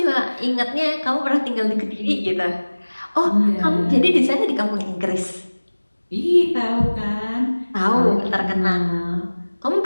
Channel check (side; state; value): both; inverted; correlation -1.00